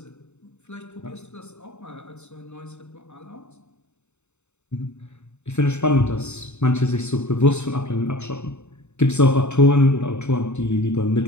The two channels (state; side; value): late; right; 0.82 ms